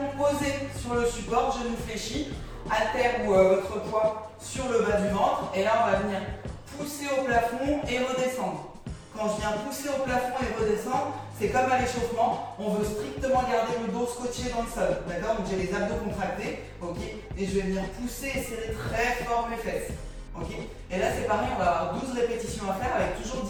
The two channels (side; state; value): both; identical; correlation 1.00